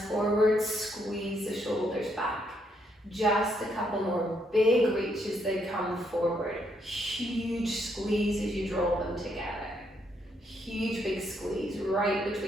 forward, squeeze the shoulders back. Just a couple more big reaches, they come forward. Huge squeeze as you draw them together. Huge big squeeze right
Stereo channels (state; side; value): normal; both; correlation 0.74